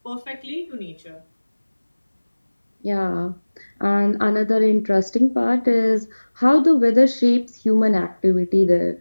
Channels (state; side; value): inverted; both; correlation -1.00